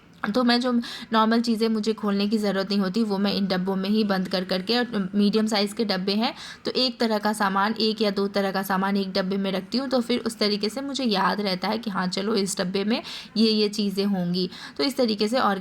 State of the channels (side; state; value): both; identical; correlation 1.00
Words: तो मैं जो नॉर्मल चीज़ें मुझे खोलने की ज़रूरत नहीं होती वो मैं इन डब्बों में ही बंद कर करके, और मीडियम साइज़ के डब्बे हैं तो एक तरह का सामान, 1 या 2 तरह का सामान एक डब्बे में रखती हूँ, तो फिर उस तरीके से मुझे याद रहता है कि हाँ चलो इस डब्बे में ये चीज़ें होंगी। तो इस तरीके से